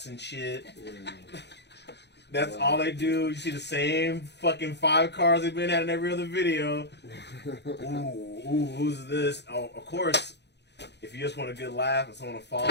and shit. That's all they do. You see the same fucking 5 cars they've been at in every other video. Ooh, who's this? Oh, of course. If you just want a good laugh and someone to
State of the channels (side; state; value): right; late; 0.50 ms